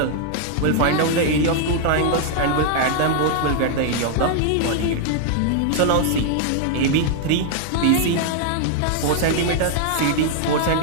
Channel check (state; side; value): different; both; correlation -0.01